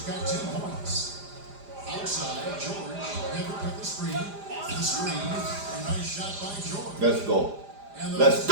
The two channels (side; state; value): left; late; 4.9 ms